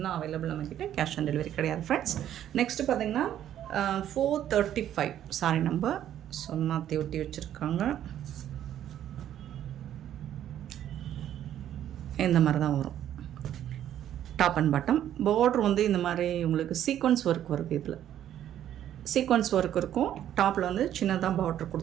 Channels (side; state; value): left; quieter; 11.1 dB